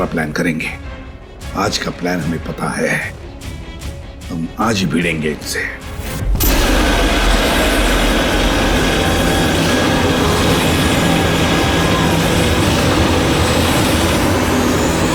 प्लान करेंगे। आज का प्लान हमें पता है, हम आज ही भिड़ेंगे इनसे।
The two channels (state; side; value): identical; both; correlation 1.00